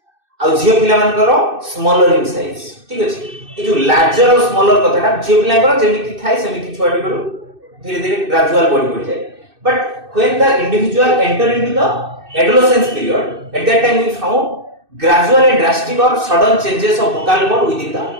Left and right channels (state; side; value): late; left; 2.6 ms